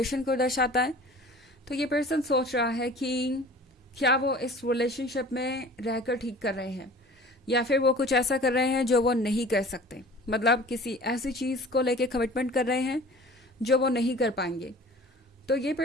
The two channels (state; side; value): normal; both; correlation 0.44